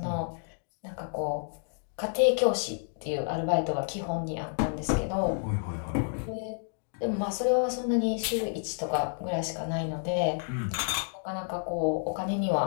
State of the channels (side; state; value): right; silent; digital silence